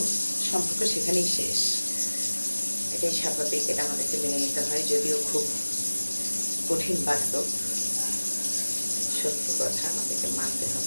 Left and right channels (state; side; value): inverted; both; correlation -1.00